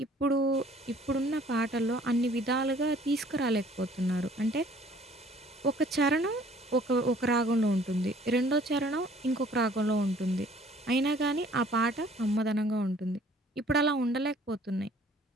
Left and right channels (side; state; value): both; normal; correlation 0.55